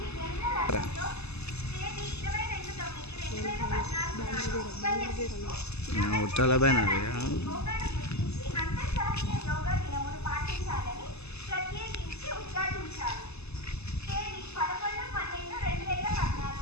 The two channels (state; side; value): late; right; 0.80 ms